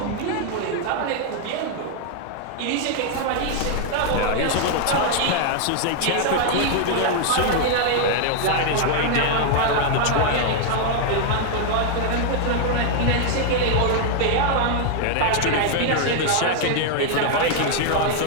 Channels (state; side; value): different; both; correlation 0.00